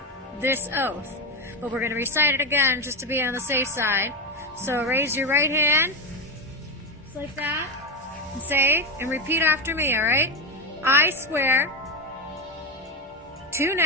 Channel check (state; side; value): normal; both; correlation 0.13